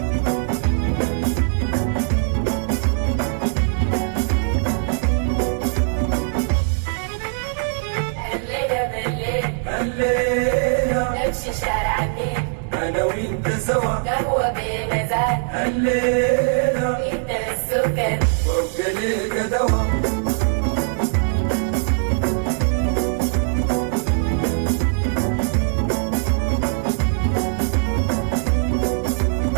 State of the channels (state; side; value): silent; left; digital silence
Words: الليلة نمشي شارع النيل انا وانت سوا قهوة بمزاج الليلة انت السكر وابقى ليك دوا